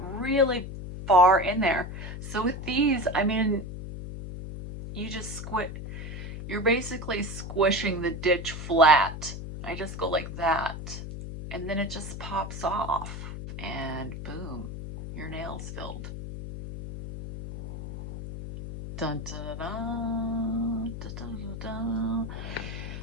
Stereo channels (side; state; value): left; noise; hum, 8 dB below the sound